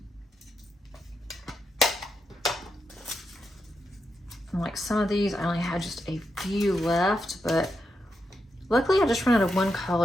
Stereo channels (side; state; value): both; normal; correlation 0.84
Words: And like some of these, I only had just a few left, but luckily I just ran out of one